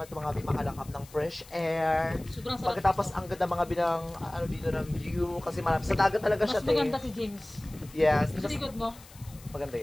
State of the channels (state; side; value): noise; left; hiss, 21 dB below the sound